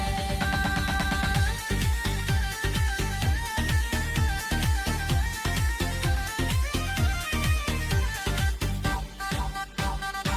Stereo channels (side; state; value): both; identical; correlation 1.00